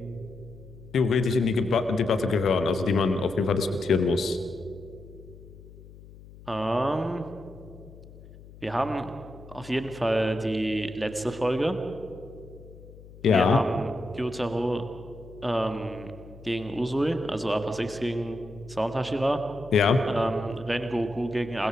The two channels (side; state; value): left; noise; hum, 19 dB below the sound